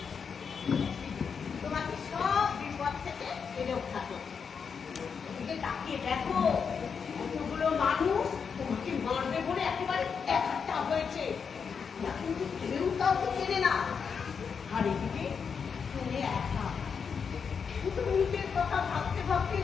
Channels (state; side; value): quieter; right; 6.2 dB